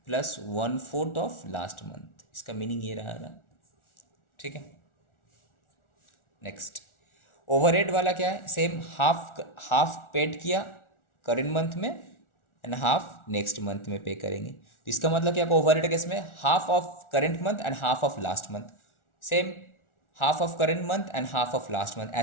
प्लस 1/4 ऑफ लास्ट मंथ। इसका मीनिंग ये रहा ना, ठीक है। नेक्स्ट ओवरहेड वाला क्या है, सेम हाफ हाफ पेड किया करेंट मंथ में एंड हाफ नेक्स्ट मंथ में पे करेंगे। इसका मतलब क्या, ओवरहेड केस में half of current month and half of last month, same half of current month and half of last month,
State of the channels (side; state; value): right; late; 1.4 ms